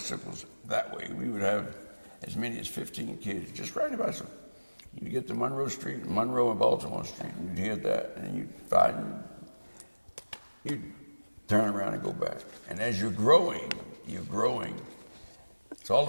that way. We would have as many as 15 kids just riding a bicycle. You'd get to Monroe Street, Monroe and Baltimore Street, and you'd hear that, and you'd find, you'd turn around and go back. And as you're growing, so all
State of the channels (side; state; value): both; inverted; correlation -1.00